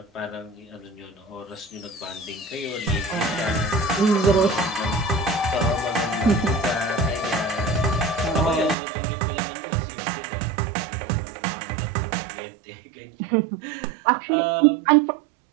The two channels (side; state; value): left; drops out; at 8.8 s